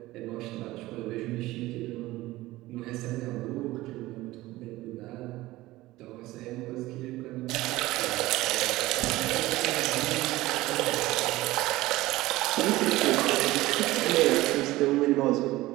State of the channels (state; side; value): quieter; left; 18.0 dB